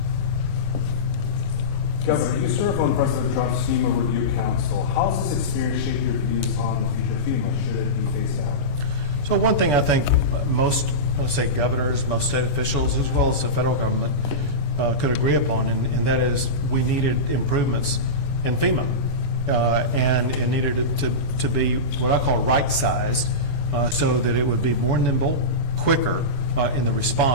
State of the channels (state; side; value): late; right; 25 ms